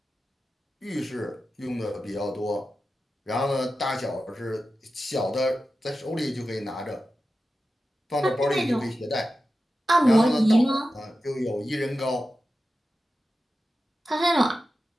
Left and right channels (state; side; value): normal; both; correlation 0.92